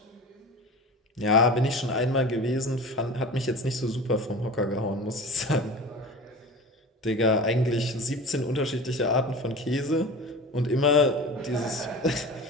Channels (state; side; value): normal; both; correlation 0.34